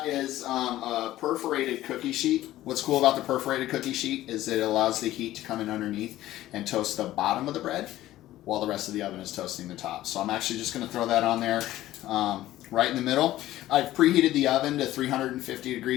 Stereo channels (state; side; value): quieter; right; 14.8 dB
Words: is a perforated cookie sheet. What's cool about the perforated cookie sheet is that it allows the heat to come in underneath and toast the bottom of the bread while the rest of the oven is toasting the top. So I'm actually just going to throw that on there right in the middle. I've preheated the oven to 350